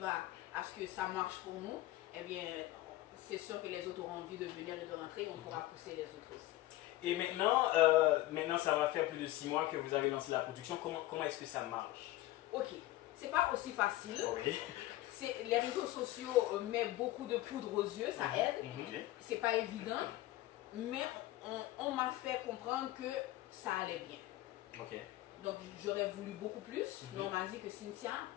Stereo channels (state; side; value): quieter; right; 16.7 dB